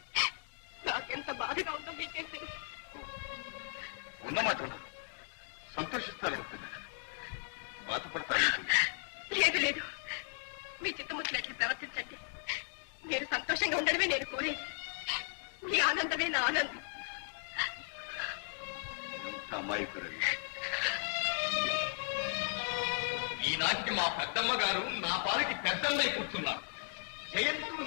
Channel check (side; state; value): right; silent; digital silence